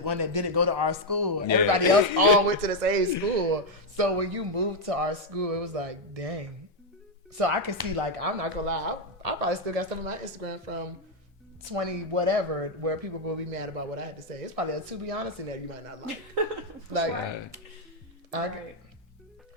that didn't go to our school. And everybody else all went to the same school. So when you moved to our school, it was like, dang. So I can see, like, I'm not gonna lie, I probably still got stuff on my Instagram from 20 whatever where people gonna be mad about what I had to say. It's probably a to be honest in there you might not like.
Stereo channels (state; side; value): normal; both; correlation 0.01